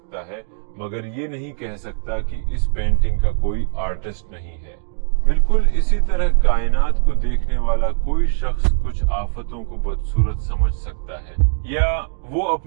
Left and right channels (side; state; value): left; silent; digital silence